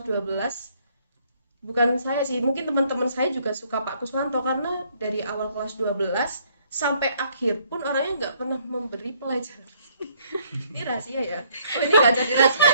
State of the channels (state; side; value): inverted; both; correlation -0.65